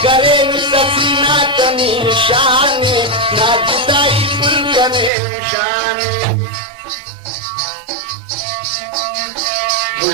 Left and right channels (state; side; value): drops out; left; at 5.1 s